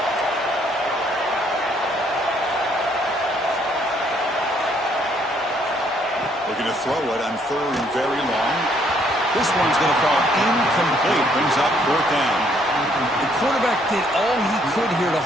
Looking to throw it on third and very long. This one's going to fall incomplete. Brings up fourth down. The quarterback did all he could here to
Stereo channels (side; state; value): both; normal; correlation 0.67